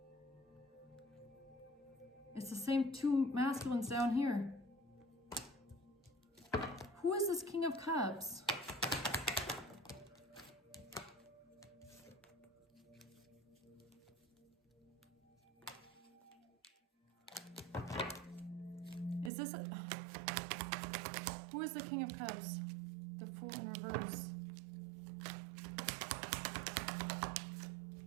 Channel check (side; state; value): left; drops out; at 19.3 s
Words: It's the same two masculines down here. Who is this King of Cups? Is this who is the King of Cups? The Fool in reverse.